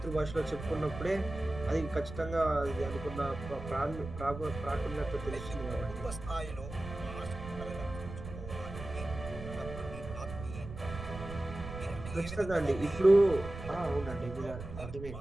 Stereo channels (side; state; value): right; noise; rumble, 10 dB below the sound